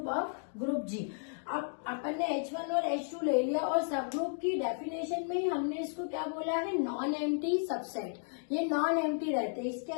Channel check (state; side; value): silent; right; digital silence